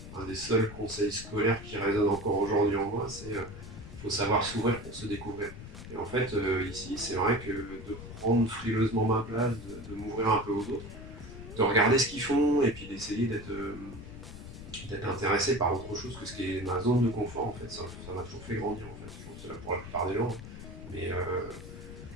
un des seuls conseils scolaires qui résonnent encore aujourd'hui en moi, c'est faut savoir s'ouvrir pour se découvrir. Et en fait, ici, c'est vrai que de prendre frileusement ma place, de m'ouvrir un peu aux autres, de regarder ce qu'ils font et puis d'essayer d'être intéressé par autre chose que ce qui est ma zone de confort, en fait, ça m'a toujours fait grandir, en fait. Je pense que c'est là pour la plupart des gens. Mais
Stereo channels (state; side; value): noise; left; rumble, 12 dB below the sound